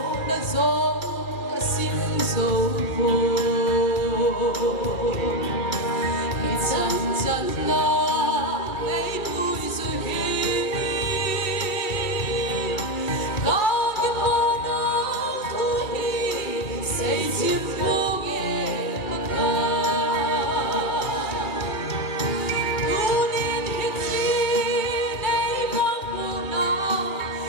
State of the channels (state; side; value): late; right; 2.4 ms